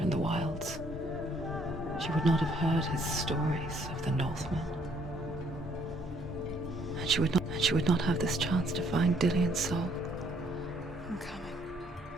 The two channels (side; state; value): both; normal; correlation 0.66